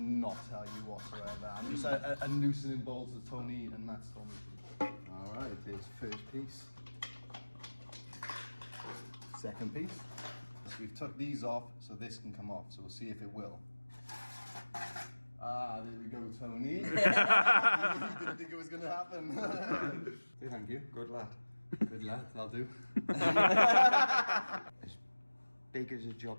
tell you whatsoever. I'm just a loosening bolts that Tony and Matt's told me to do. All right, here's first piece. Second piece. So we've took these off so this can come off. So we'll see if it will. Ah, there we go, Tony. You didn't think it was going to happen. Thank you. Good lad. Good lad, that'll do. As big as a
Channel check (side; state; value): both; inverted; correlation -1.00